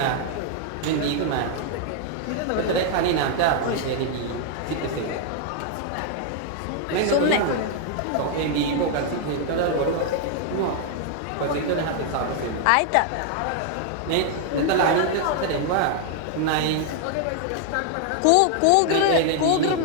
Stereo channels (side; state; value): both; different; correlation 0.00